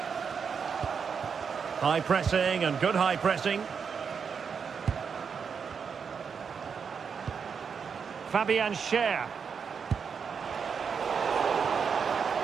High pressing and good high pressing. Fabian Schär.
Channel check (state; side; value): quieter; left; 6.3 dB